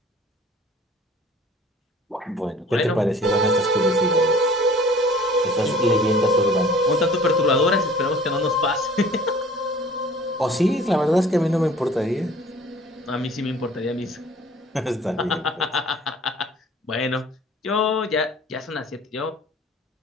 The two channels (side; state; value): both; normal; correlation 0.50